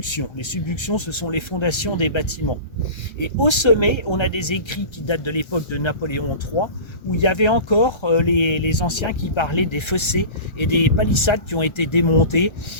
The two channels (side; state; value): right; late; 1.3 ms